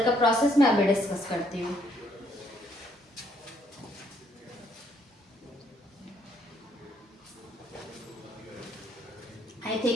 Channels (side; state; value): both; normal; correlation 0.69